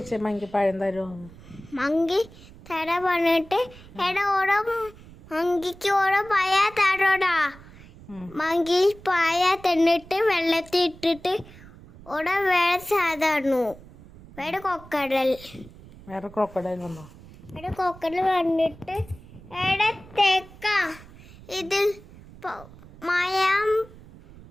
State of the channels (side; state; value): right; noise; rumble, 20 dB below the sound